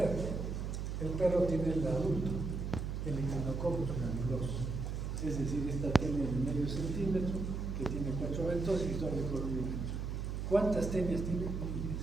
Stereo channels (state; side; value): noise; right; hum, 3 dB below the sound